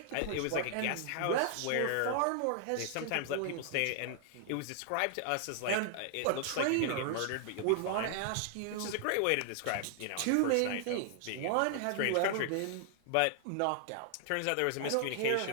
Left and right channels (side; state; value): both; different; correlation 0.00